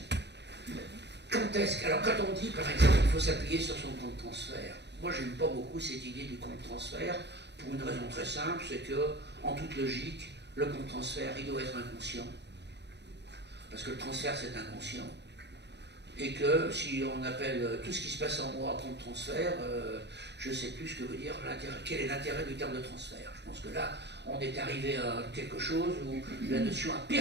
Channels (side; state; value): left; late; 0.50 ms